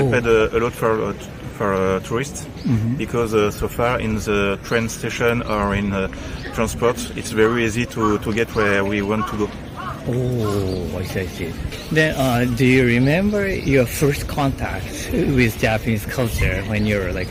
a lot for tourists, because so far in the train station or in transport, it's very easy to get where we want to go. Oh, I see. Then, do you remember your first contact with Japanese culture when you were like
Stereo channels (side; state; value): both; identical; correlation 1.00